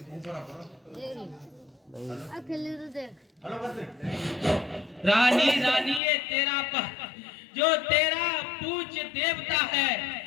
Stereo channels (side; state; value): right; drops out; at 6.0 s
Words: रानी रानी ये तेरा जो तेरा पूज्य देवता है,